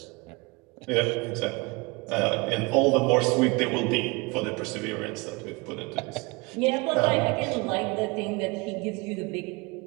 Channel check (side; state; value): left; quieter; 26.5 dB